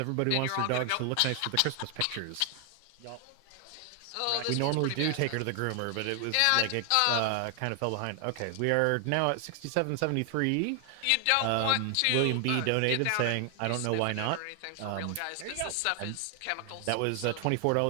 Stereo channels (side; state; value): both; different; correlation 0.00